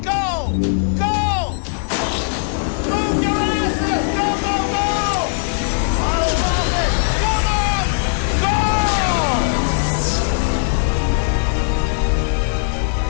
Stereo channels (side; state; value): right; silent; 63 dB below the other